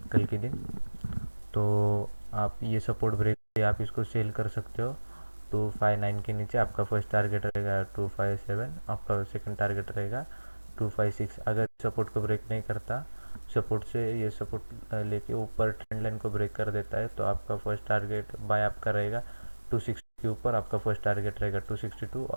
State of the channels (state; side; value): inverted; both; correlation -1.00